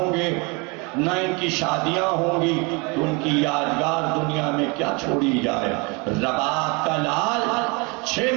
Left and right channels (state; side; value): quieter; left; 29.4 dB